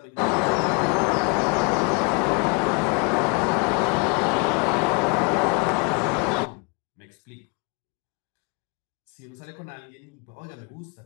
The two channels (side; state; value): right; quieter; 33.3 dB